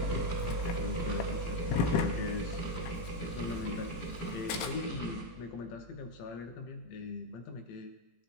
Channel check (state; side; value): late; right; 17 ms